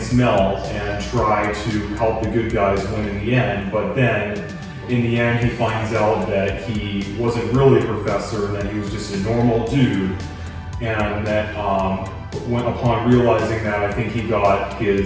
Mel and try to help the good guys win in the end. But then in the end, he finds out that he wasn't really a professor, and that he was just a normal dude, and that upon realizing that, I think he got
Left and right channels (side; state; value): both; identical; correlation 1.00